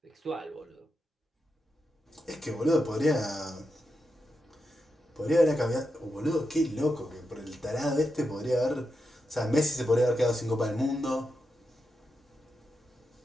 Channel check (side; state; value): both; normal; correlation 0.87